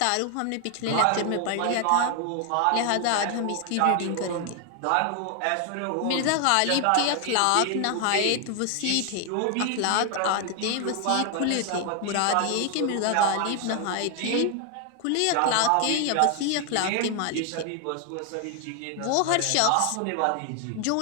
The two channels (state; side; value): different; both; correlation 0.00